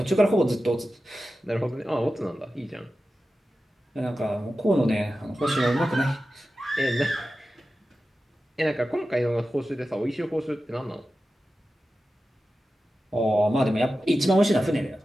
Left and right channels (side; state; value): both; normal; correlation 0.93